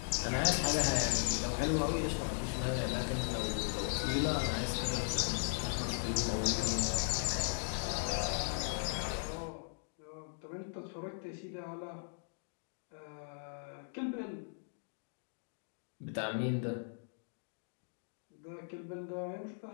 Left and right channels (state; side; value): silent; right; digital silence